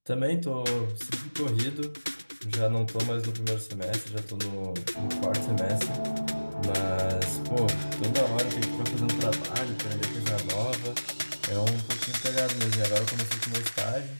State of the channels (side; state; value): both; inverted; correlation -1.00